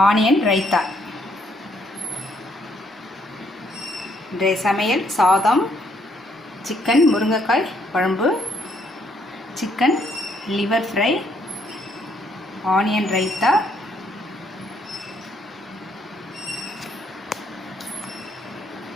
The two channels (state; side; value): normal; both; correlation 0.70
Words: onion raita. இன்றைய சமையல் சாதம், சிக்கன் முருங்கைக்காய் குழம்பு, chicken liver fry, onion raita,